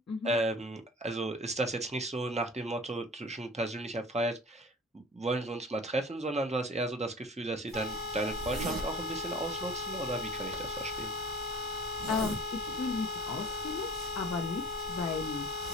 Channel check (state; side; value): normal; both; correlation 0.43